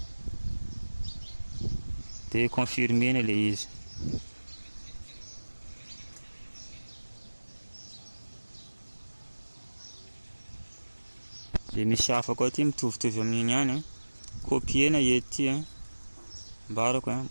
Dia confirmena le izy. Dia misy hafa koa ty mitovitovy amin'iny ihany copiena ety mbarako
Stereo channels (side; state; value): both; inverted; correlation -1.00